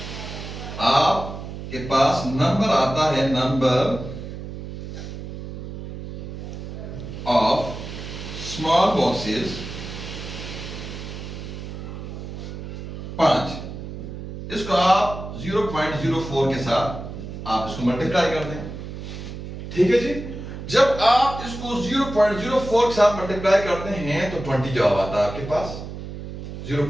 आपके पास नंबर आता है, नंबर ऑफ स्मॉल बॉक्सेस 5। इसको आप 0.04 के साथ आप इसको मल्टीप्लाई कर दें, ठीक है जी। जब आप इसको 0.04 के साथ मल्टीप्लाई करते हैं तो 20 जवाब आता है आपके पास,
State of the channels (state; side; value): noise; right; hum, 9 dB below the sound